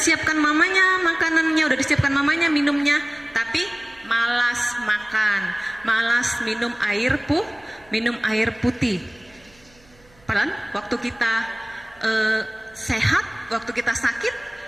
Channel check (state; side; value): noise; right; hum, 29 dB below the sound